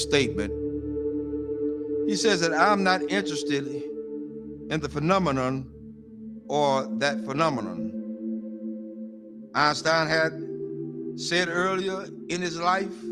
He says that I'm not interested in the phenomenon or that phenomenon. Einstein had said earlier in his life,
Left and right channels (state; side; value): identical; both; correlation 1.00